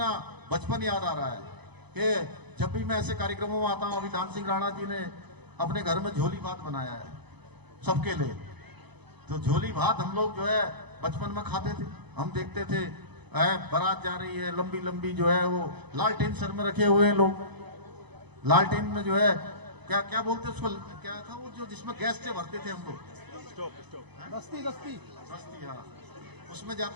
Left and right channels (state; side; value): late; left; 0.99 ms